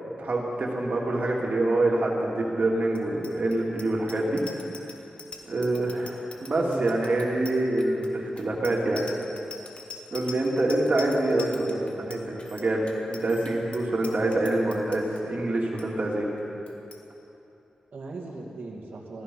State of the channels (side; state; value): both; normal; correlation 0.91